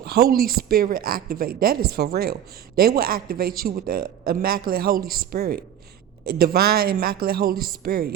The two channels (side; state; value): left; quieter; 10.2 dB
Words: Holy Spirit activate. That is for real. They will activate you with the immaculate Holy Spirit. Divine immaculate Holy Spirit,